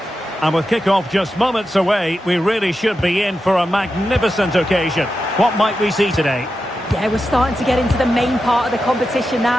And with kick-off just moments away, we really should be in for a magnificent occasion. What might we see today? Yeah, we're starting to get into the main part of the competition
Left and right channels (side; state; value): both; normal; correlation 0.90